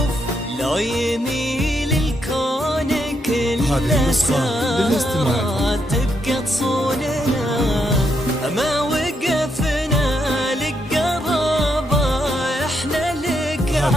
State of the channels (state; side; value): normal; both; correlation 0.78